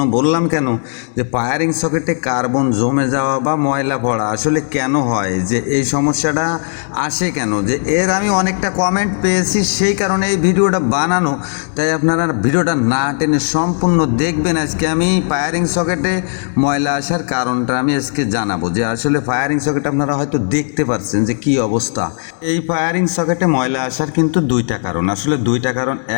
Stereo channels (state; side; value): silent; right; digital silence